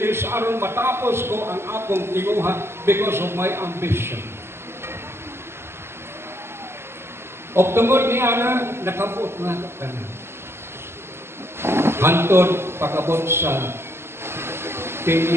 aron matapos ko ang akong tinguha because of my ambition. Og tungod ni Ana, nakabot na kana. Hantod pakabot sa 10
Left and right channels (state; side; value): late; left; 0.12 ms